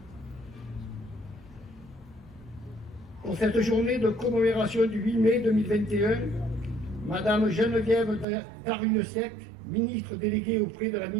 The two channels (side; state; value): left; drops out; at 8.2 s